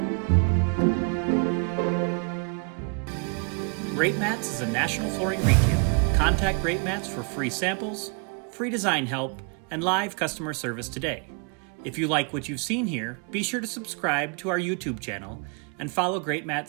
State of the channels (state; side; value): quieter; left; 36.8 dB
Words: Greatmats is a national flooring retailer. Contact Greatmats for free samples, free design help, and live customer service today. If you like what you've seen here, be sure to subscribe to our YouTube channel and follow